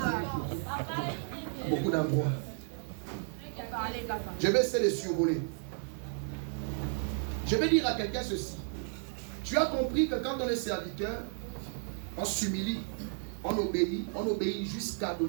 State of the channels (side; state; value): left; silent; 56 dB below the other